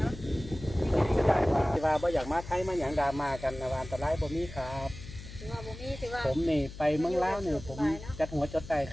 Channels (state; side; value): noise; left; hum, 13 dB below the sound